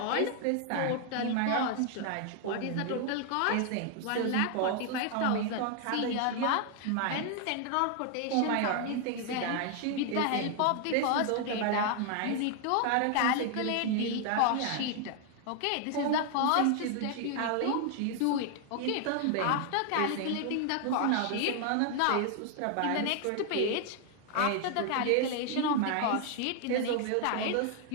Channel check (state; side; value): different; both; correlation 0.00